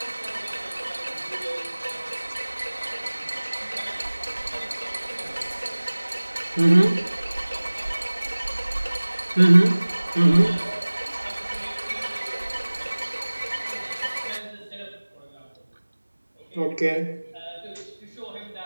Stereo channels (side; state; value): both; inverted; correlation -1.00